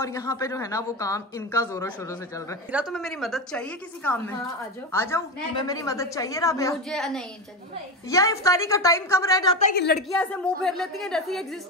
यहाँ पे जो है ना वो काम इनका जोरों शोरों से चल रहा है। तुम्हें मेरी मदद चाहिए किसी काम में? हाँ, आ जाओ। तुम्हें मेरी मदद चाहिए राबिया? मुझे नहीं चाहिए। या इफ्तारी का टाइम कम रह जाता है कि लड़कियां ऐसे मुंह फेर लेती हैं जैसे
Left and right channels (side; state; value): both; normal; correlation 0.18